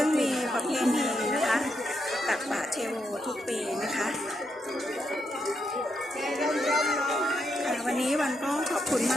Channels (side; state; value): both; normal; correlation 0.81